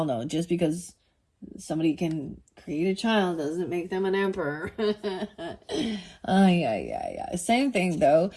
know, just because somebody can create a child doesn't make them an emperor. Yeah. Same thing though.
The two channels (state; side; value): identical; both; correlation 1.00